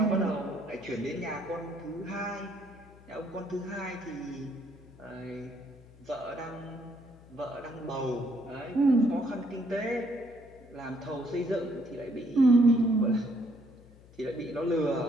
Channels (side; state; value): left; noise; hum, 23 dB below the sound